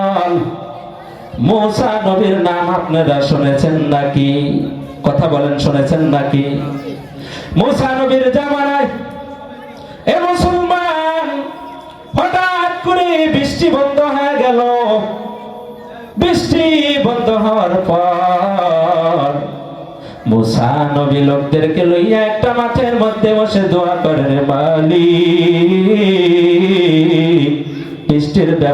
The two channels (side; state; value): both; identical; correlation 1.00